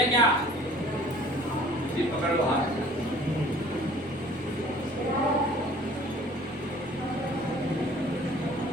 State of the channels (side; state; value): both; normal; correlation 0.51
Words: क्या जी पकड़ लो हाथ।